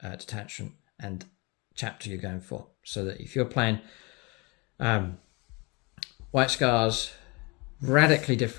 detachment and chapter you're going for. So that if you're playing White Scars, radically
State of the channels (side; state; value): right; quieter; 27.8 dB